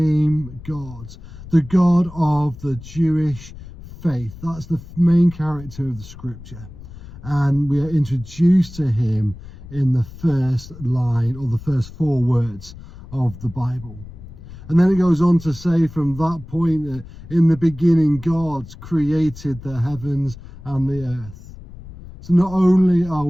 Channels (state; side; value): noise; left; rumble, 16 dB below the sound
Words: God, the God of the Jewish faith. That's the main character of the scripture. And we are introduced to him in the first line, or the first 4 words of the Bible. And then it goes on to say from that point that in the beginning God created the heavens and the earth. So not only are